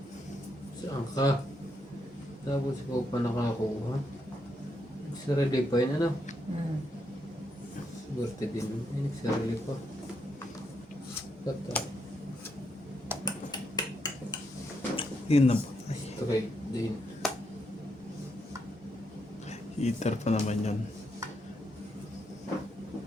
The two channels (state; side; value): normal; both; correlation 0.79